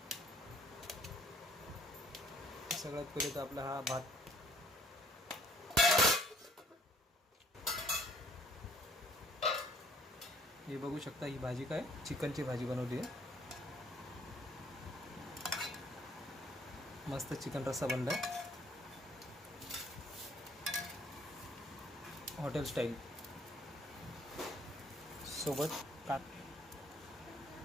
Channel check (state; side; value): normal; both; correlation 0.60